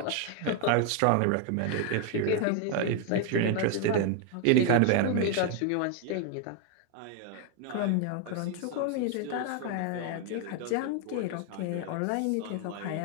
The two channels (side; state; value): both; different; correlation 0.01